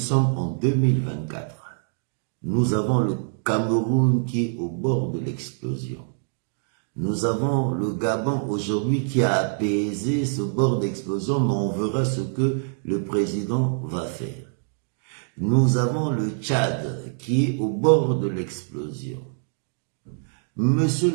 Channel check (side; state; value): left; silent; digital silence